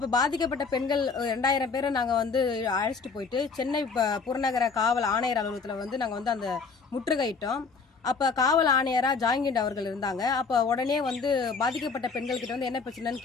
பாதிக்கப்பட்ட பெண்கள் 2000 பேரை நாங்க அழைச்சிட்டு போயிட்டு சென்னை புறநகர காவல் ஆணையர் அலுவலகத்தில் நாங்க அந்த முற்றுகையிட்டோம். அப்ப காவல் ஆணையரா ஜாங்கிண்ட் அவர்கள் இருந்தாங்க. அப்ப உடனே பாதிக்கப்பட்ட பெண்கள் கிட்ட என்ன பிரச்சனைன்னு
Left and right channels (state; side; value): quieter; right; 4.9 dB